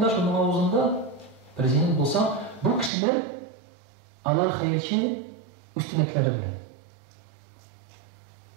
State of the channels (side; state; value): left; drops out; at 2.9 s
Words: şunun ağzında prezident bulsa bu kişiler Allah hayırçı üstünlükleri bilir.